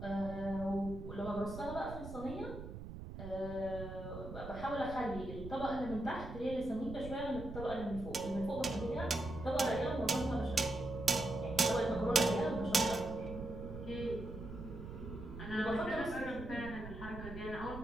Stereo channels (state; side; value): noise; right; rumble, 10 dB below the sound